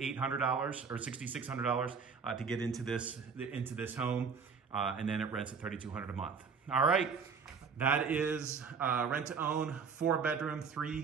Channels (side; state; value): left; quieter; 5.7 dB